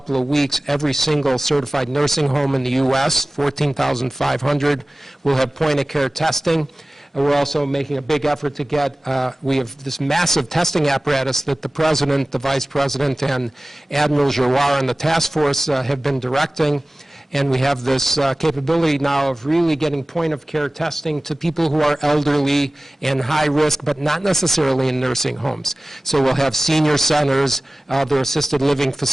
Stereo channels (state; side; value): normal; both; correlation 0.97